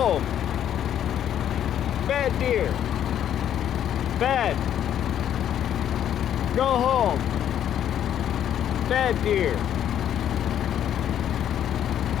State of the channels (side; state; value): right; quieter; 10.3 dB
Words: Bad deer. Bad. Go home. Bad deer.